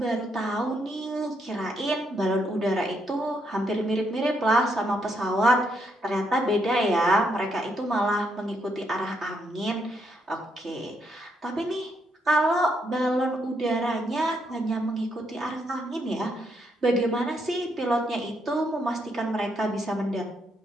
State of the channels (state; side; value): normal; both; correlation 0.77